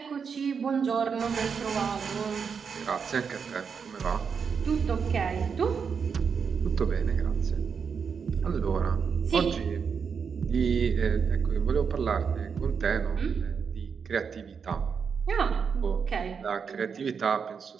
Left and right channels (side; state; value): left; quieter; 6.2 dB